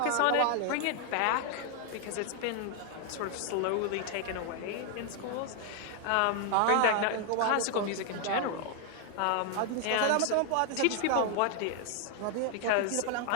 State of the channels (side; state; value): both; different; correlation 0.00